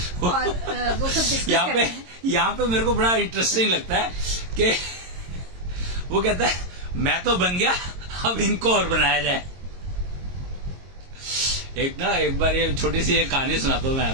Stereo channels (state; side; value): late; left; 22 ms